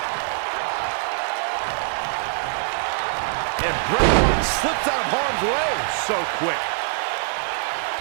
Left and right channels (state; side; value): silent; left; digital silence